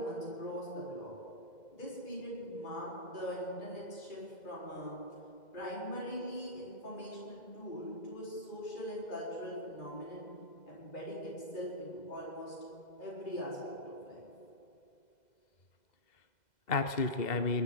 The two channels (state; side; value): late; right; 2.0 ms